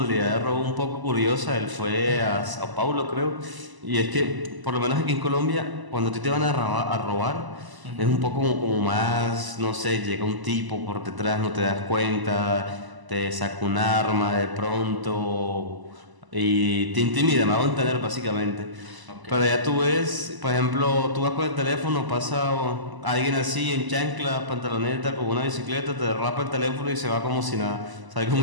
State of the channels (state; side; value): late; left; 1.0 ms